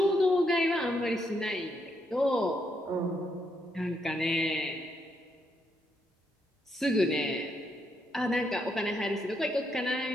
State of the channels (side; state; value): both; normal; correlation 0.77